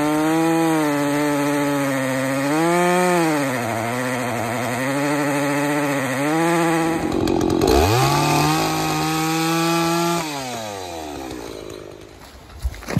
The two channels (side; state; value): both; identical; correlation 1.00